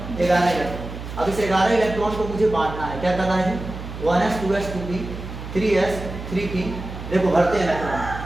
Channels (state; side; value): noise; right; hum, 9 dB below the sound